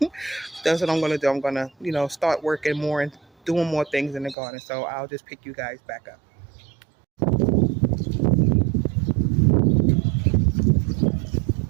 that's what I'm gonna do. I'm gonna, start working more and doing more things in the garden. So I'll just pick you guys back up.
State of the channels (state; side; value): drops out; left; at 4.4 s